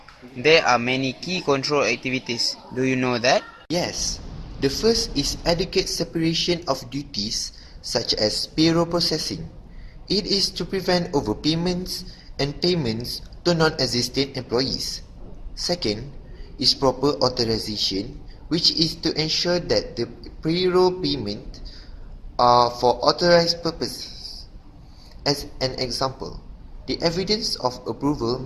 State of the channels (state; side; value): identical; both; correlation 1.00